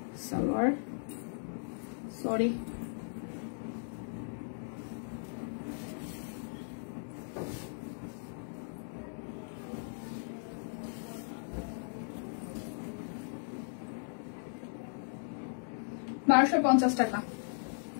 সালোয়ার, সরি $1250 টাকা।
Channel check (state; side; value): silent; right; digital silence